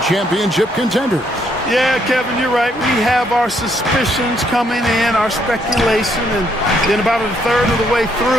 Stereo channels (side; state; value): both; normal; correlation 0.72